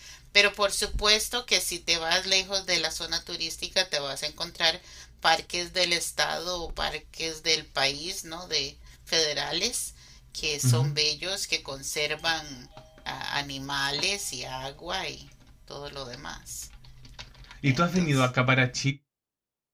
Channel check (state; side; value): identical; both; correlation 1.00